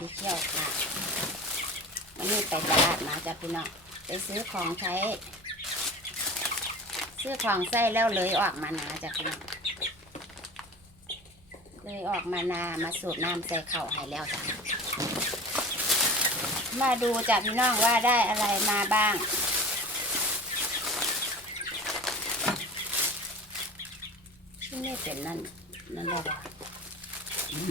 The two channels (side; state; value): both; normal; correlation 0.36